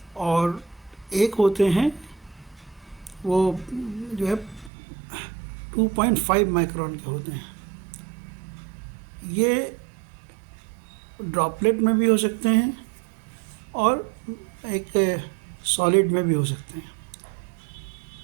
और एक होते हैं वो जो है 2.5 माइक्रोन के होते हैं। ये ड्रॉपलेट में भी हो सकते हैं और एक सॉलिड में भी हो सकते हैं।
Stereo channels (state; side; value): drops out; left; at 4.7 s